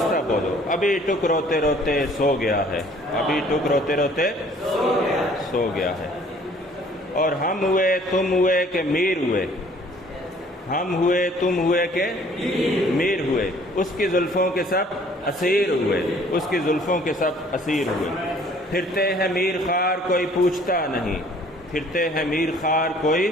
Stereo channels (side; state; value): both; normal; correlation 0.56